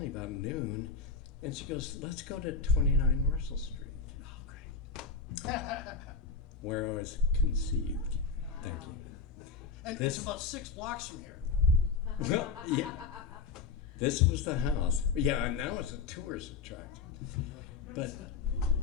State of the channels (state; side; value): quieter; right; 5.0 dB